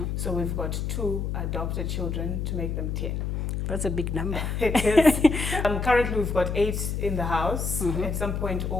So we've got 2 adopted children to make them 10. That's a big number. It is. Currently, we've got 8 in the house. Mm-hmm. At some point,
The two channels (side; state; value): left; noise; hum, 2 dB below the sound